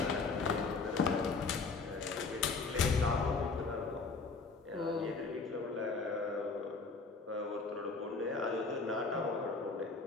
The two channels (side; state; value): right; quieter; 4.2 dB